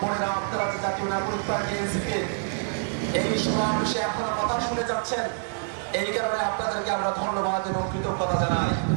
বোনেরা, আপনারা যে জাতীয় নাগরিক পার্টি এনসিপি এই সমাবেশে আপনারা কথা শুনে যাচ্ছেন, এই কারণে আপনাদেরকে আমরা ধন্যবাদ এবং কৃতজ্ঞতা জানাই।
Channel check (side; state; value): left; silent; 61 dB below the other